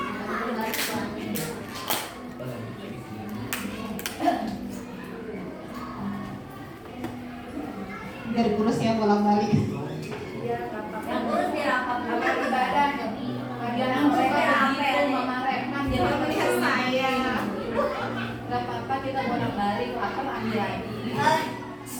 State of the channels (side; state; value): both; identical; correlation 1.00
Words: Dari kurus ya, bolak-balik. Yang urus biar apa? Kamar ibadah. Bagian yang suka begitu, Mama Reman. Jangan melihat saya. Gak apa-apa, kita bolak-balik. Akal ambil lagi.